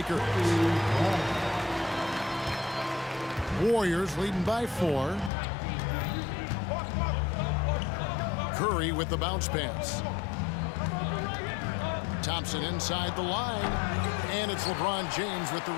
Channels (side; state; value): right; drops out; at 5.3 s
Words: Warriors leading by 4. Curry with the bounce pass. Thompson inside the line. And it's LeBron James with the